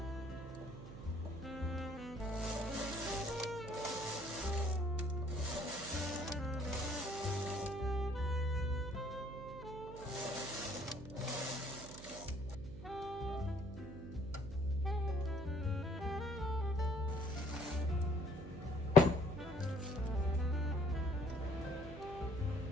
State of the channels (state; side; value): noise; right; hum, 12 dB below the sound